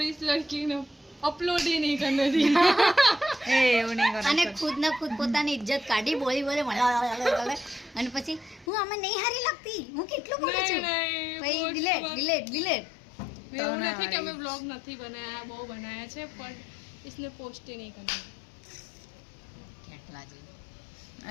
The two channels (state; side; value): drops out; right; at 8.7 s